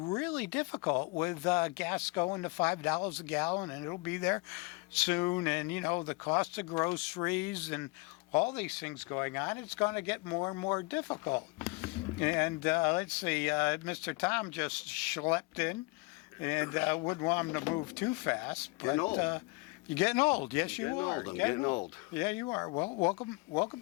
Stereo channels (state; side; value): quieter; right; 26.3 dB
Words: difficult with gas going to $5 a gallon, and it'll be there soon, and, the cost of groceries and all these things going on, it's going to get more and more difficult. And let's see, Mr. Tom just schlepped in. And wouldn't want him to move too fast. But you're getting old. Yes, you are. I'm getting old. Yeah, you are. Well, welcome